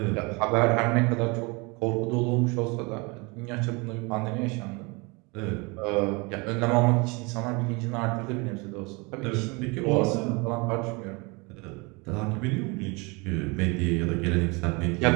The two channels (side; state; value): left; quieter; 28.0 dB